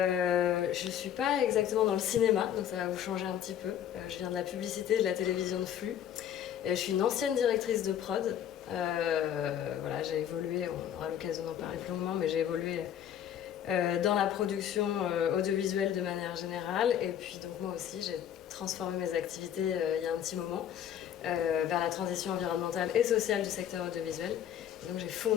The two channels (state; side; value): quieter; right; 10.0 dB